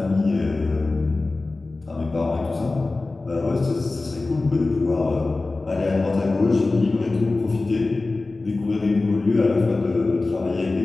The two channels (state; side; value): quieter; right; 3.3 dB